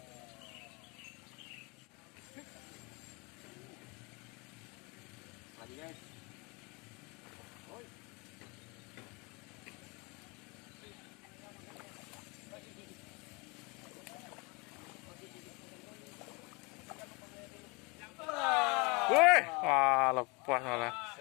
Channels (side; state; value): right; quieter; 28.4 dB